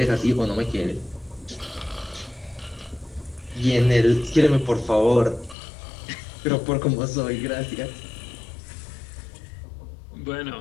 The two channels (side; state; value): right; drops out; at 5.6 s